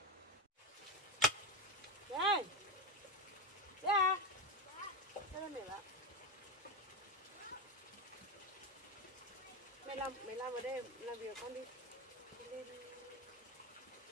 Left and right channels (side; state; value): both; normal; correlation 0.17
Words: Đây. Ra. Ra mẹ bạn. Mày làm ở đây làm việc con đi. Lên